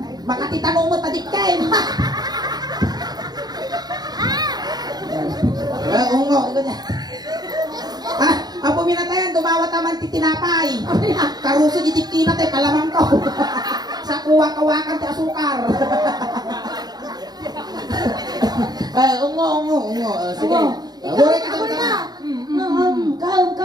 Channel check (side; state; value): left; late; 0.19 ms